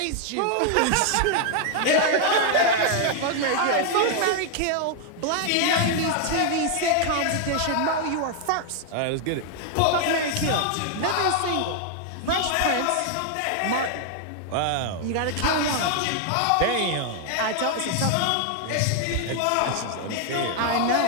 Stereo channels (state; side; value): different; both; correlation 0.00